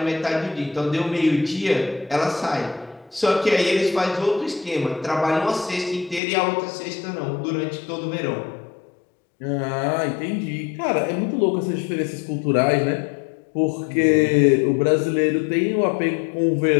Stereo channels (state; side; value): drops out; right; at 6.2 s